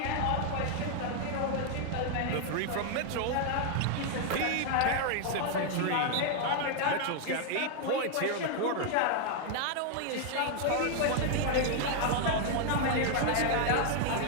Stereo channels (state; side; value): different; both; correlation 0.00